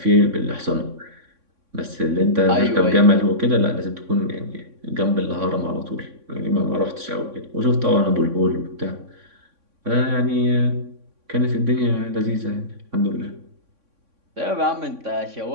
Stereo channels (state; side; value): late; left; 3.6 ms